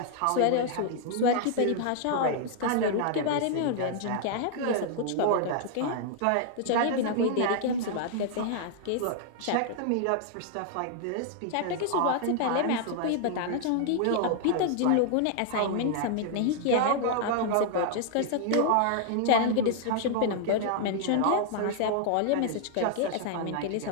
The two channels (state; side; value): different; both; correlation 0.00